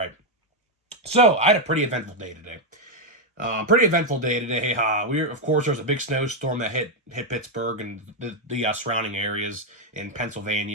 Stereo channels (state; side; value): normal; both; correlation 0.02